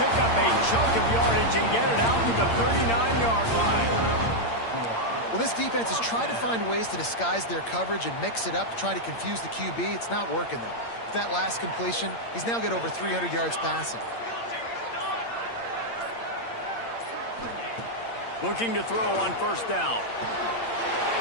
up a chunk of yardage and get it out to the 39-yard line. Well, this defense is trying to find ways to disguise their coverage and mix it up to try to confuse the QB. It's not working, though. With that last completion, he's now got over 300 yards passing. Looking to throw on first down.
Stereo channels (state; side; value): late; right; 8.7 ms